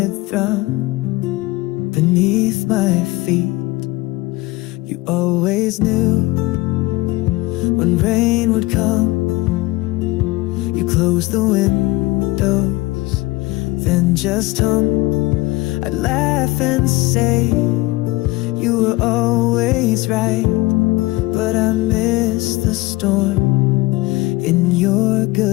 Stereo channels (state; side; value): quieter; right; 20.9 dB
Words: thrum beneath my feet. You always knew when rain would come, you close the windows, then just hum. I'd laugh and say you were always right, but I miss the storm in your